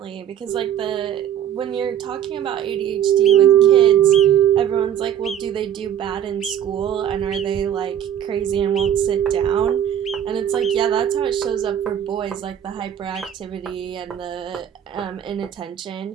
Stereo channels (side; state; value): left; quieter; 10.0 dB